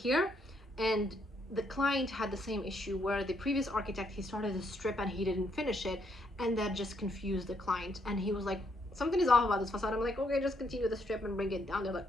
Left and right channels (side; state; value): both; normal; correlation 0.74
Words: And the client had the same issue where the previous architect, he started a strip and he didn't finish it, and that just confused the client, and he was like, something is off about this facade. I'm like, okay, just continue the strip and bring it down. They're like,